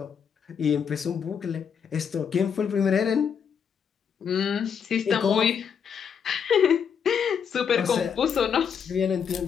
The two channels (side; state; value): right; quieter; 7.2 dB